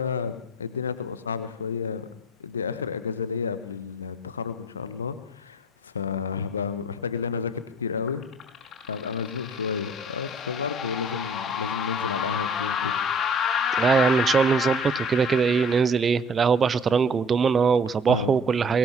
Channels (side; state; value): both; normal; correlation 0.50